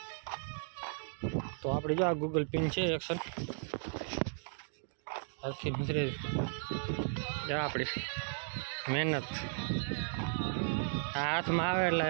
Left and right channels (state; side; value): silent; left; digital silence